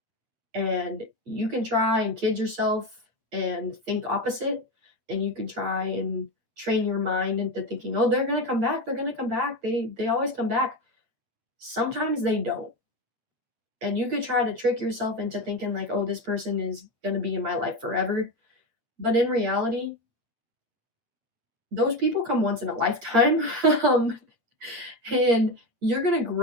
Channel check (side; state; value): left; late; 8.9 ms